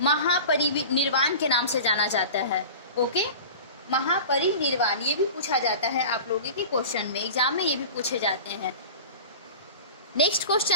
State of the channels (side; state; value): both; inverted; correlation -0.35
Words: के नाम से जाना जाता है। ओके, महापरिनिर्वाण ये भी पूछा जाता है आप लोगों के क्वेश्चन में, एग्जाम में ये भी पूछे जाते हैं। नेक्स्ट